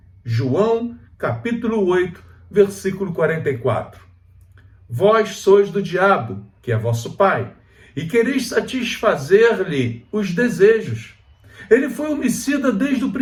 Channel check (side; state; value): both; identical; correlation 1.00